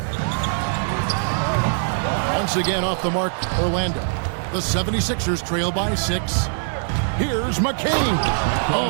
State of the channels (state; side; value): silent; left; 64 dB below the other